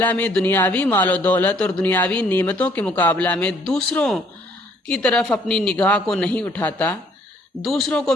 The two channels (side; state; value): both; normal; correlation 0.63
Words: میں دنیاوی مال و دولت اور دنیاوی نعمتوں کے مقابلہ میں دوسروں کی طرف اپنی نگاہ کو نہیں اٹھاتا، دوسروں کو